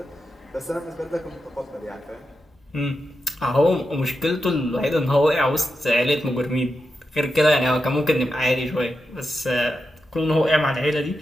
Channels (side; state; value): both; normal; correlation 0.88